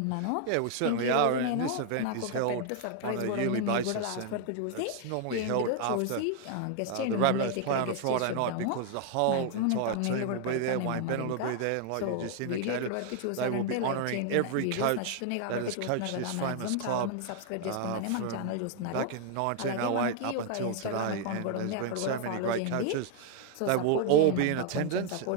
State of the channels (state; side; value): different; both; correlation 0.00